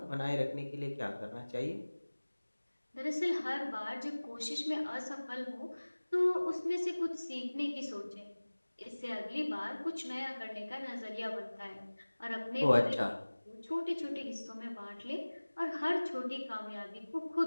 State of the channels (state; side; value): inverted; both; correlation -1.00